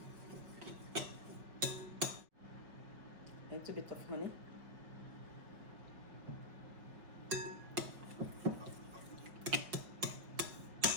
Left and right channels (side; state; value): left; late; 5.6 ms